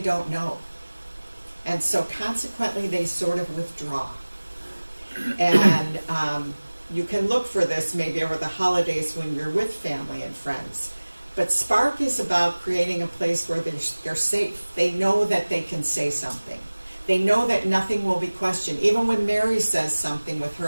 know. And so consequently, they sort of withdraw. And you can look for this maybe over the holidays when you're with family and friends. But Spark is about creating a place where they're safe. They know that they can say something. They know that nothing will be questioned. Even when Mary says something with her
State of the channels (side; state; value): both; inverted; correlation -1.00